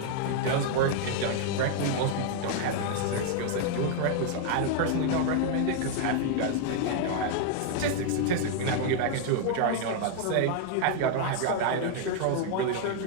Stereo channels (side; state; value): both; different; correlation 0.00